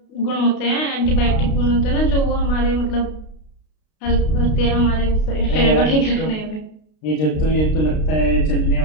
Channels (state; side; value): late; right; 32 ms